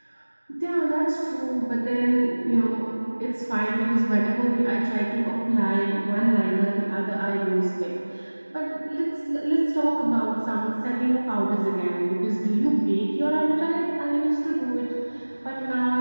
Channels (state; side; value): inverted; both; correlation -1.00